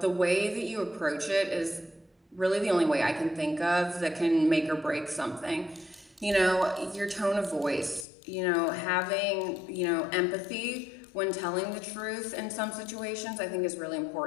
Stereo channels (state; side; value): drops out; right; at 8.1 s